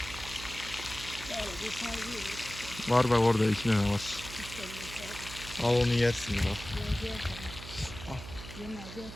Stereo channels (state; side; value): noise; right; hum, 12 dB below the sound